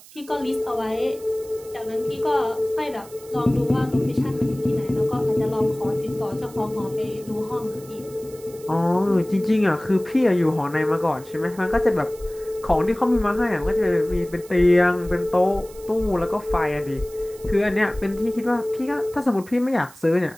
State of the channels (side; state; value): right; noise; hiss, 21 dB below the sound